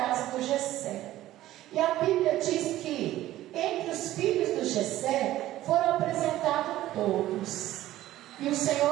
do Jessé. E a Bíblia diz que entre os filhos do Jessé foram apresentados todos. E o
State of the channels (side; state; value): left; quieter; 14.7 dB